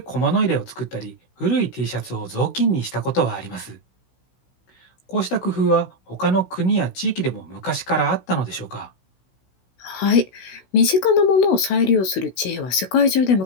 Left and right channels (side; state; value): right; late; 16 ms